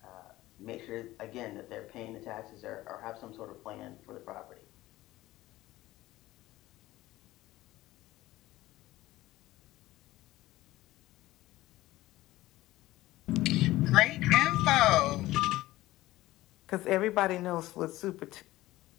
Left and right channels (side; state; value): right; quieter; 17.0 dB